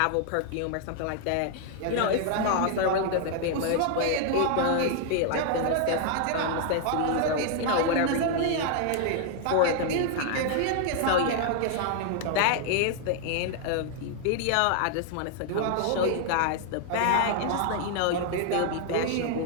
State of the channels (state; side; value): different; both; correlation 0.00